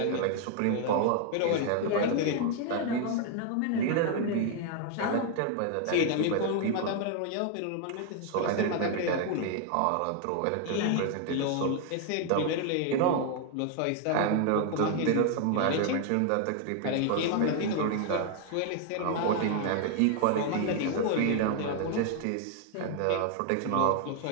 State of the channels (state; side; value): different; both; correlation 0.00